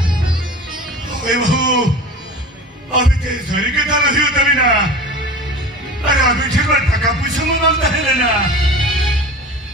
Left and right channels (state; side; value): normal; both; correlation 0.36